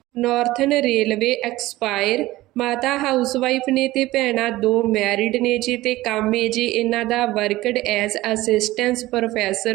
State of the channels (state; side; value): quieter; left; 17.6 dB